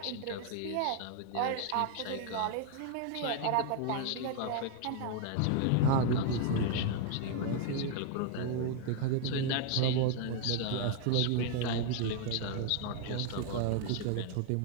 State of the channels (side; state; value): both; different; correlation 0.00